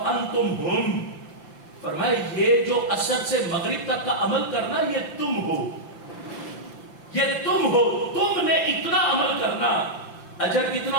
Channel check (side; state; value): right; late; 5.8 ms